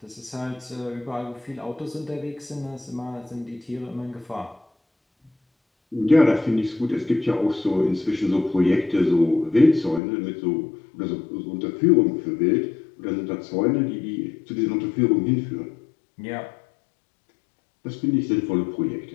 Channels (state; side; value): drops out; right; at 10.0 s